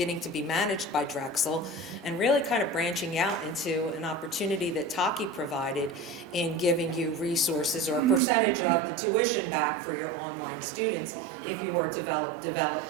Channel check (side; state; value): left; drops out; at 8.2 s